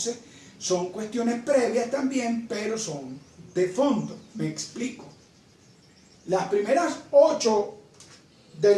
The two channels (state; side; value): identical; both; correlation 1.00